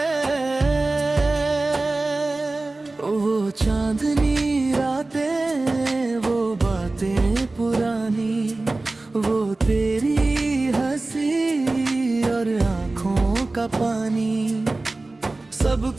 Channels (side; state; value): left; quieter; 3.1 dB